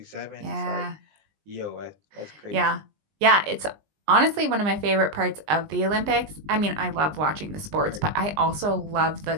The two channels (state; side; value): late; left; 20 ms